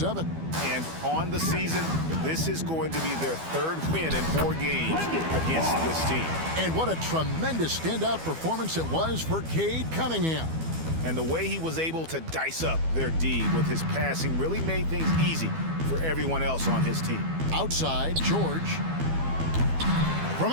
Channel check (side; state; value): left; late; 12 ms